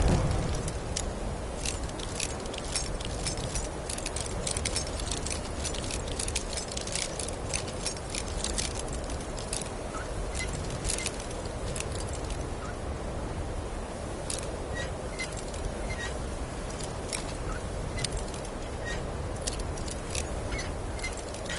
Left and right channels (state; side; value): identical; both; correlation 1.00